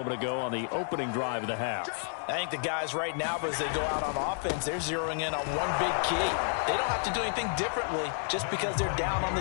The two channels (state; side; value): silent; right; digital silence